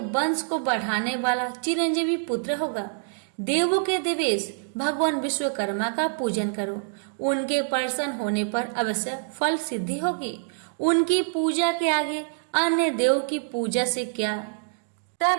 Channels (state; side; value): silent; left; digital silence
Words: वंश को बढ़ाने वाला चिरंजीवी पुत्र होगा। देवों के देवेश भगवान विश्वकर्मा का पूजन करो। उनके प्रसन्न होने पर अवश्य फल सिद्धि होगी। उनकी पूजा के आगे अन्य देव की पूजा से क्या।